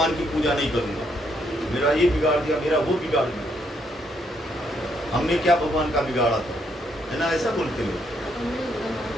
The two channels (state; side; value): normal; both; correlation 0.73